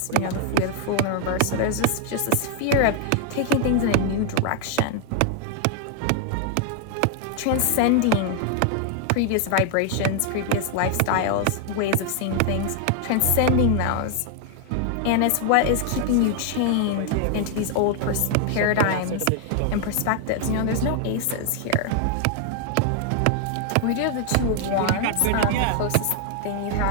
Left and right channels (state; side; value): different; both; correlation 0.00